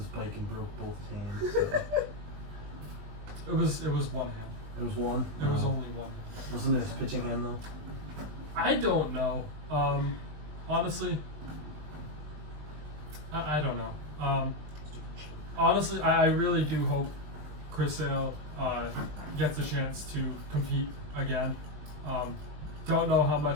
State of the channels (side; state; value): left; late; 20 ms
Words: bike and broke both his hands. So. It was one hand. It was one. There was only one. Wasn't it his pitching hand though? I don't know. Honestly, I don't know. Honestly, I really do hope Chris Sale gets a chance to compete again. Don't know how